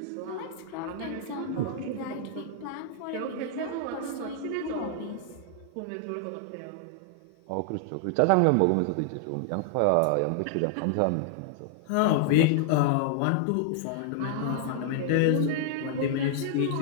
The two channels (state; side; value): different; both; correlation -0.01